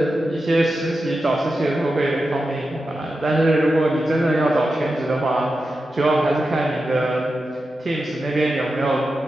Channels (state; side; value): normal; both; correlation 0.90